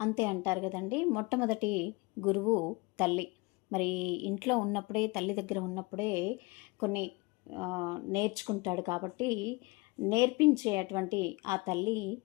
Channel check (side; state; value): right; quieter; 25.5 dB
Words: అంటారు కదండి. మొట్టమొదటి గురువు తల్లి. మరి ఇంట్లో ఉన్నప్పుడే, తల్లి దగ్గర ఉన్నప్పుడే కొన్ని నేర్చుకుంటాడు కాబట్టి నేర్పించేటువంటి ఆ తల్లి